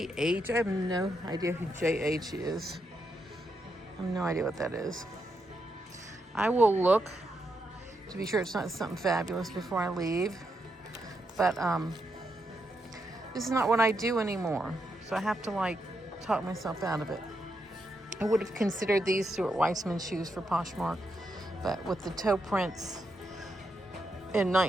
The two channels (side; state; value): both; normal; correlation 0.82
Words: I have no idea who JH is. I have no idea what that is. I will look to be sure it's not something fabulous before I leave. But this is not what I do anymore. So I have to talk myself out of it. I would have considered these Stuart Weitzman shoes for Poshmark, but with the toe prints and